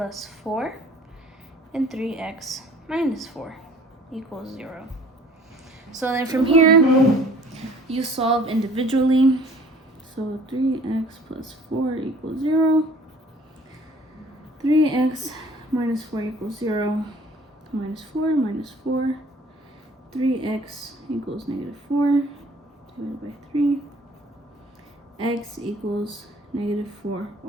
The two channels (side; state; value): both; normal; correlation 0.52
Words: 4 and 3x minus 4 equals 0. So then from here, you solve individually. So 3x plus 4 equals 0. 3x minus 4 equals 0. Minus 4 minus 4. 3x equals negative 4 divided by 3. X equals negative 4